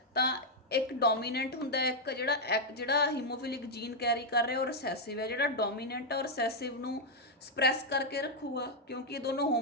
ਤਾਂ ਇੱਕ ਡੋਮੀਨੈਂਟ ਹੁੰਦਾ, ਇੱਕ ਜਿਹੜਾ ਹੀਮੋਫਿਲਿਕ ਜੀਨ ਕੈਰੀ ਕਰ ਰਿਹਾ ਉਹ ਰਿਸੈਸਿਵ ਹੈ। ਜਿਹੜਾ ਡੋਮੀਨੈਂਟ ਆ ਉਹ ਰਿਸੈਸਿਵ ਨੂੰ ਸਪਰੈਸ ਕਰਕੇ ਰੱਖੂਗਾ ਕਿਉਂਕਿ ਇਹ ਦੋਨੋਂ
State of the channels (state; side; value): normal; both; correlation -0.01